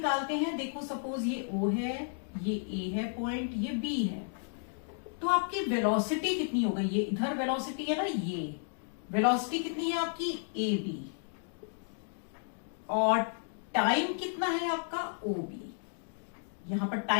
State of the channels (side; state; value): right; silent; digital silence